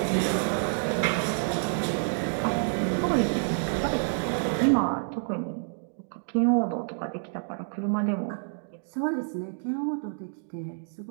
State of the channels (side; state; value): left; silent; digital silence